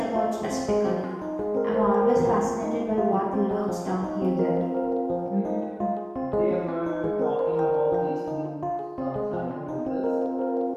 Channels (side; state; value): both; identical; correlation 1.00